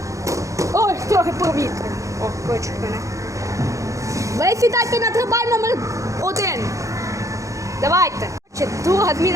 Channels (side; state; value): left; late; 0.15 ms